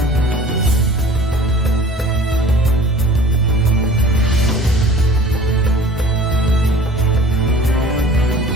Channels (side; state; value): both; normal; correlation 0.46